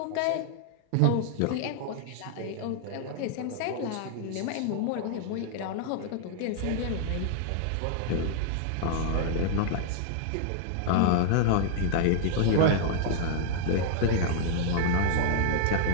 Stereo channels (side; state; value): both; different; correlation 0.00